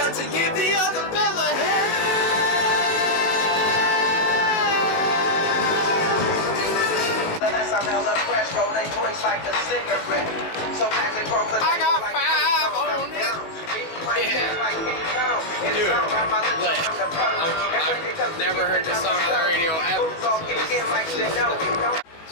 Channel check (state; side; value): late; right; 18 ms